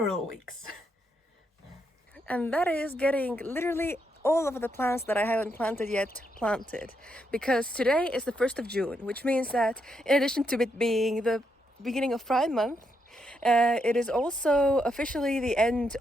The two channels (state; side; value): normal; both; correlation 0.79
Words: weeks. And that is getting literally all of the plants that I haven't planted yet planted. Because today is the 1st of June, which means that in addition to it being the beginning of Pride Month, it is also officially the end